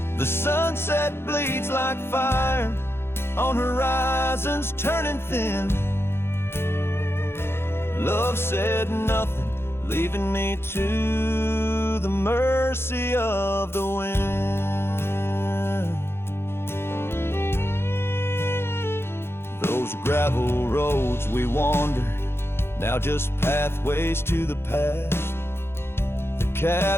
The sunset bleeds like fire on horizons turning thin. Love said nothing, leaving me to the mercy of the wind. Those gravel roads we wandered, now just pathways to the past. The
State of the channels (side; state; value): right; late; 0.12 ms